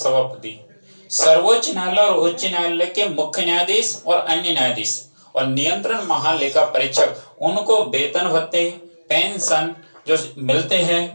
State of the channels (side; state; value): both; inverted; correlation -1.00